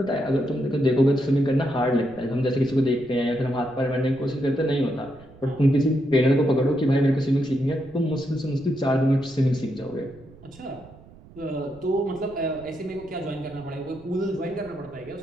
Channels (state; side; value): noise; right; rumble, 22 dB below the sound